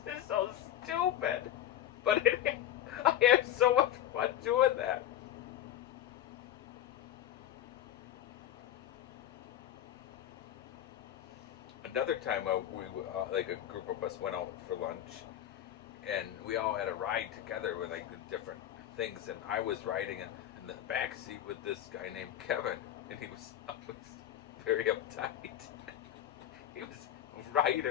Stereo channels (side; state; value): right; quieter; 11.5 dB